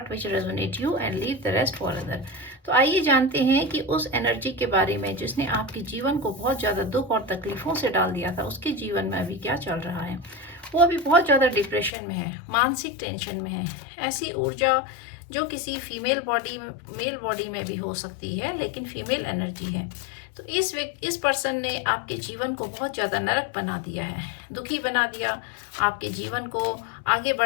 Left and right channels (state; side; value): drops out; right; at 11.9 s